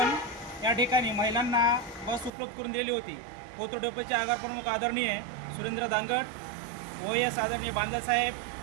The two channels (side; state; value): left; drops out; at 2.3 s